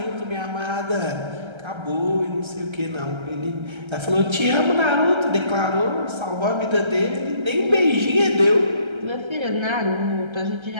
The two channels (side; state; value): left; late; 1.3 ms